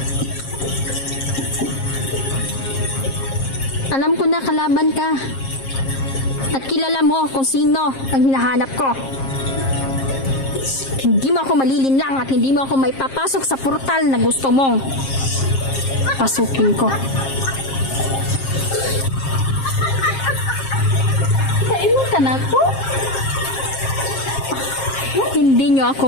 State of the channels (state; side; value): late; right; 7.5 ms